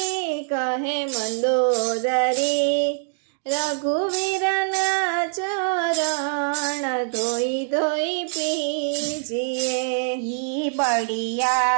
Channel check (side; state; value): left; silent; digital silence